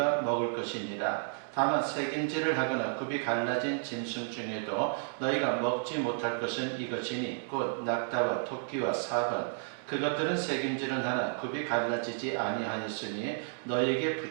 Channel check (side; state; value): left; silent; digital silence